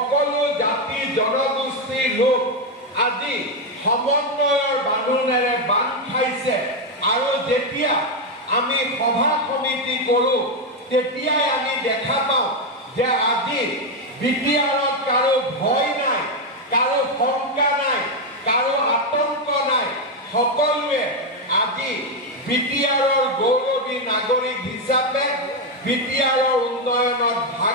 জাতি জনগোষ্ঠীৰ লোক আজি সমন্বয়ৰ বান্ধোনেৰে বান্ধ খাইছে আৰু যেতিয়া আমি সভা সমিতি কৰো তেতিয়াই আমি দেখা পাওঁ যে আজি বিটিআৰত কাৰো ভয় নাই, কাৰো শংকা নাই, কাৰো আতংক নাই। সকলোৱে আজি বিটিআৰৰ গৌৰৱী নাগৰিক হিচাপে বিটিআৰৰ উন্নয়নত ভাগ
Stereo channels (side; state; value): both; normal; correlation 0.06